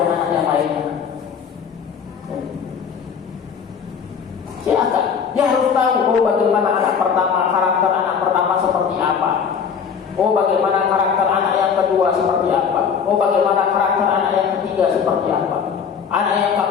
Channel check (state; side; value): quieter; right; 6.8 dB